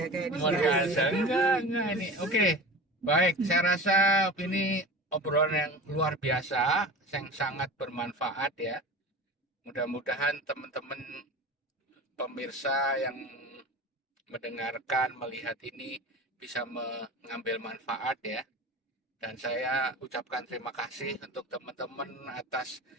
kayak di Luar biasa. Enggak ini. Oke. Baik, saya rasa ini obrolan yang luar biasa, yang sangat bermanfaat ya. Mudah-mudahan teman-teman pemirsa yang mendengarkan, melihat ini bisa mengambil manfaat ya. Dan saya ucapkan terima kasih untuk teman-teman atas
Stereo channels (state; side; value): normal; both; correlation 0.33